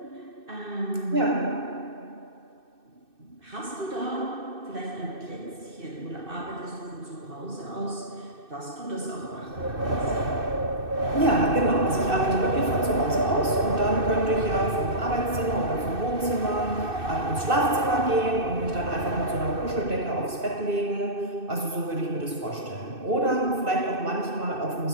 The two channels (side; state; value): left; late; 2.6 ms